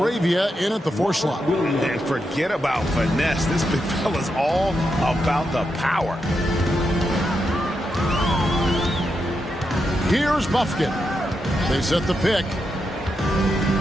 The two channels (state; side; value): normal; both; correlation 0.85